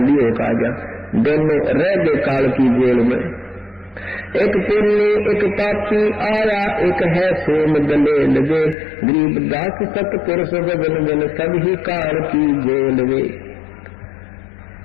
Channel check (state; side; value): drops out; right; at 8.8 s